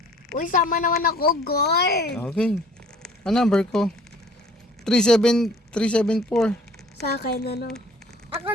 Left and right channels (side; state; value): both; normal; correlation 0.53